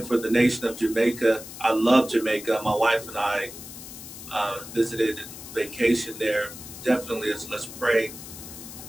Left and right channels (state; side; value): noise; left; hiss, 13 dB below the sound